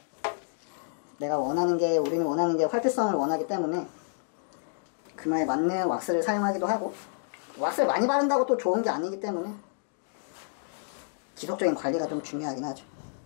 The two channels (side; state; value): right; silent; digital silence